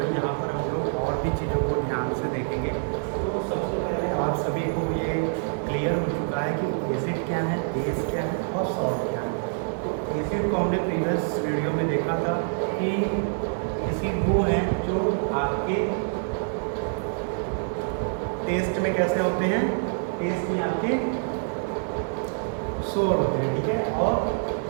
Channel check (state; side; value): silent; left; digital silence